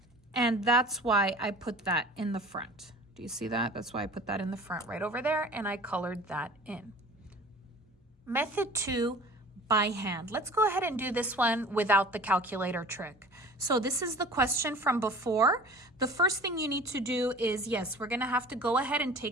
And that's why I put that in the front. Do you see that? That's why I put that in the front right over there, and I colored that in. Method 2, by hand. Let's go ahead and do this one without the calculator trick. So this is the question from before. The first thing you need to do is, yes, we're gonna have to go ahead and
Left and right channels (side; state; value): both; normal; correlation 0.42